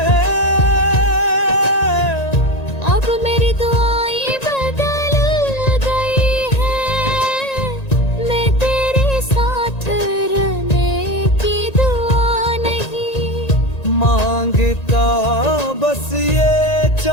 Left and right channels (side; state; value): right; late; 1.9 ms